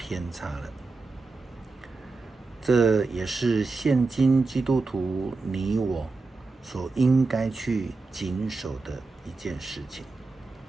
差了。这也是现今基督徒你我所应该去谨守的一件事情。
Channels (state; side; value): quieter; left; 3.7 dB